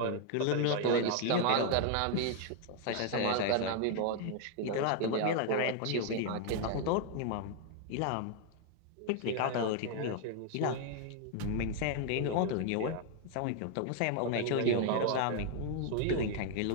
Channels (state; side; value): different; both; correlation 0.00